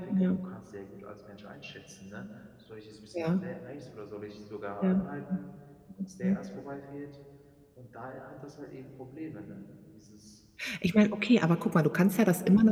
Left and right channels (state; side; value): identical; both; correlation 1.00